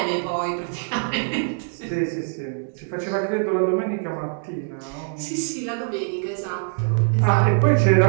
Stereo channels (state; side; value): silent; left; 63 dB below the other